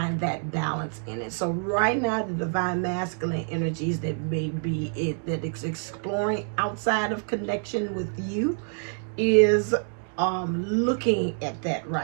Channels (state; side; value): silent; left; 58 dB below the other